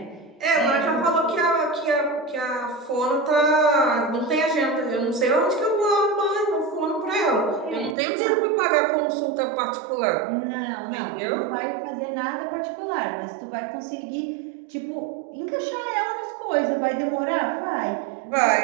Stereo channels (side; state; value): left; drops out; at 8.0 s